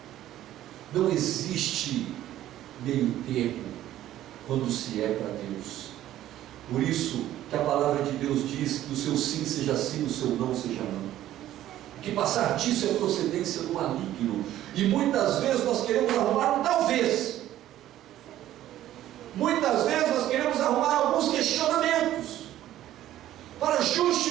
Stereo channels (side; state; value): left; quieter; 13.2 dB